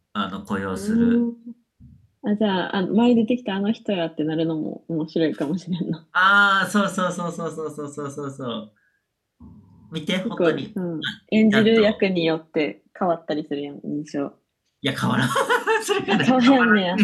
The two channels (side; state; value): both; identical; correlation 1.00